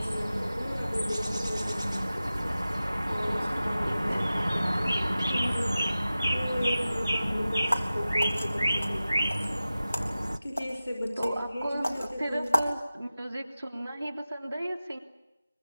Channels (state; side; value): inverted; both; correlation -0.95